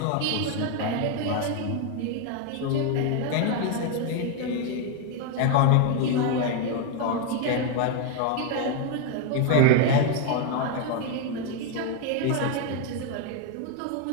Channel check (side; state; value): both; different; correlation 0.01